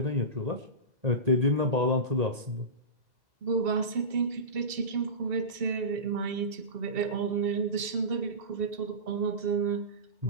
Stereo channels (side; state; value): left; late; 2.7 ms